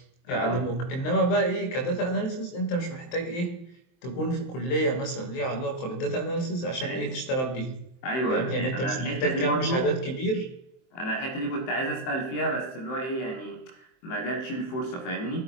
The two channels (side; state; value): right; late; 23 ms